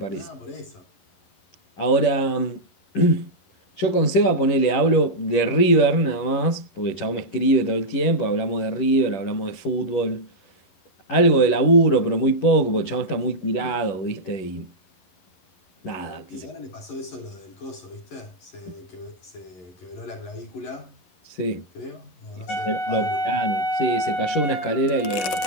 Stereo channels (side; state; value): right; late; 10 ms